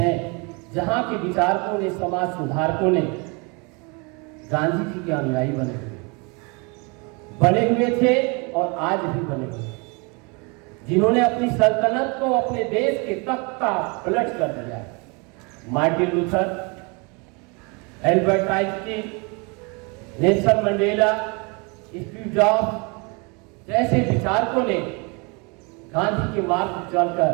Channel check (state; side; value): quieter; left; 30.8 dB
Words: जहां के विचारकों ने, समाज सुधारकों ने गांधी जी के अनुयायी बने हुए थे और आज भी बने हुए, जिन्होंने अपनी सल्तनत को अपने देश के तख्त का पलट कर दिया। Martin Luther, Albert Einstein, Nelson Mandela, Steve jobs जैसे विचारकों ने गांधी के मार्ग पर चलकर